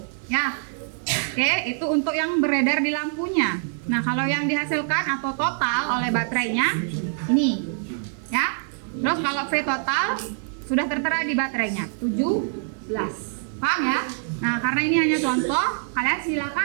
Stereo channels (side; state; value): left; silent; 62 dB below the other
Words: ya. Oke, itu untuk yang beredar di lampunya. Nah, kalau yang dihasilkan atau total oleh baterainya ini, ya. Terus kalau V total sudah tertera di baterainya 17. Paham ya? Nah, karena ini hanya contoh, kalian